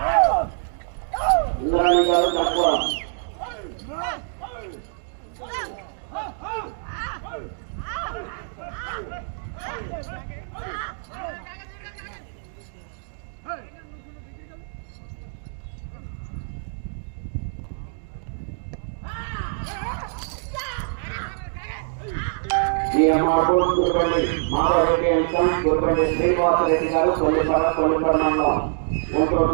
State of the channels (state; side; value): silent; left; digital silence